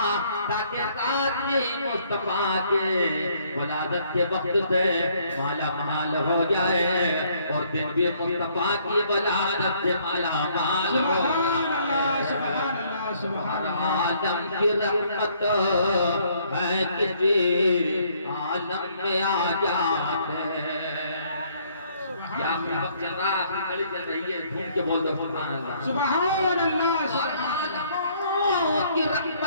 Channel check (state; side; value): inverted; both; correlation -0.65